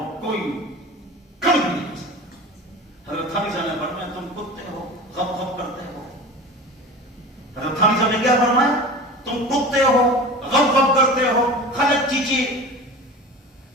کوئی کر بھی نہیں کر سکتا۔ حضرت تھانوی صاحب نے فرمایا تم کتے ہو، غب غب کرتے ہو۔ حضرت تھانوی صاحب نے کیا فرمایا؟ تم کتے ہو، غب غب کرتے ہو، خلق چیچی،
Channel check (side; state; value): both; normal; correlation 0.34